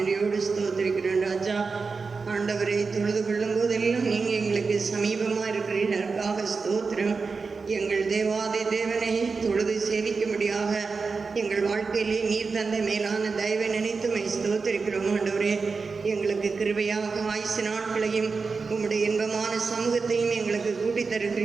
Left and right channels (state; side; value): quieter; left; 4.6 dB